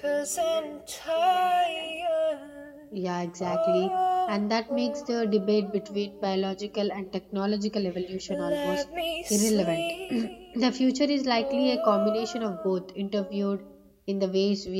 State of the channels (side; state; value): both; identical; correlation 1.00